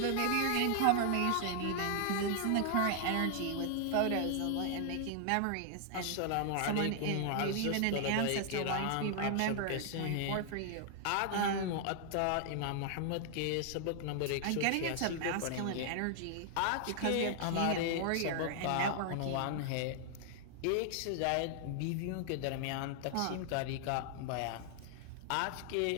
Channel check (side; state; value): both; different; correlation 0.00